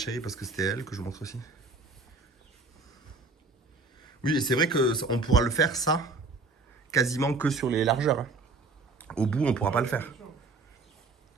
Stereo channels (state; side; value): quieter; left; 3.7 dB